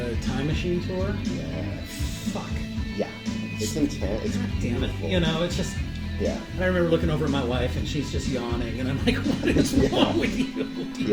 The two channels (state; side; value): identical; both; correlation 1.00